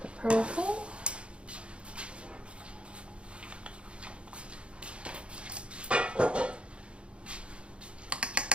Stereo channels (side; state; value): left; late; 0.058 ms